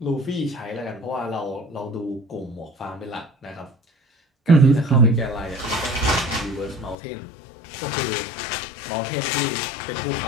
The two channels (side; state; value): right; drops out; at 7.0 s